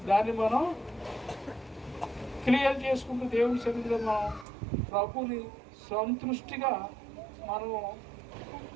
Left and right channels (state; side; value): drops out; left; at 4.5 s